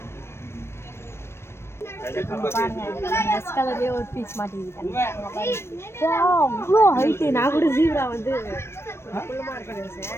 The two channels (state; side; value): late; right; 0.12 ms